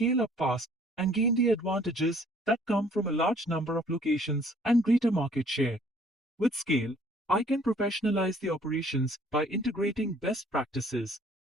up fast and gain the advantages that come from a large number of locations and greater market share. With scale, I can professionalize the operations by integrating best practices,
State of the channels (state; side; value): normal; both; correlation 0.58